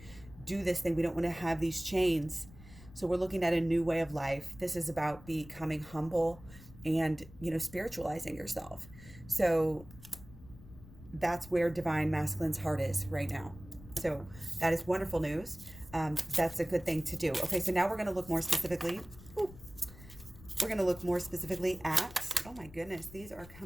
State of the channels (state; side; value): noise; left; rumble, 19 dB below the sound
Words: do this thing. We don't want to have these chains. So we're looking at a new way of life. This is about becoming humble and, spiritualizing yourself. So that's where divine masculine's heart is right now. So that is wonderful news. That's a good thing to do. Okay, so now we're going to look more specifically. We're going to look more specifically at, oh my goodness, these are